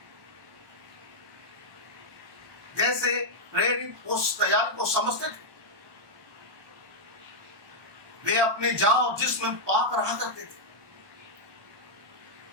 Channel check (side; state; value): left; late; 1.2 ms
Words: जैसे प्रेरित उस तैयारी को समझते थे, वे अपने जान और जिस्म में पाक रहा करते थे।